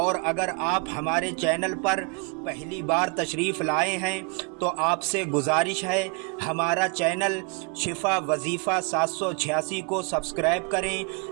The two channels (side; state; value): left; quieter; 32.5 dB